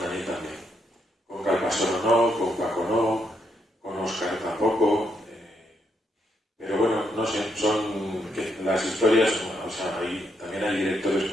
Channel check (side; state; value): both; normal; correlation 0.77